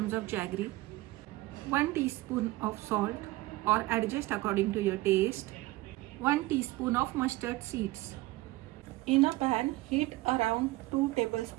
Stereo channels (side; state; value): left; quieter; 19.2 dB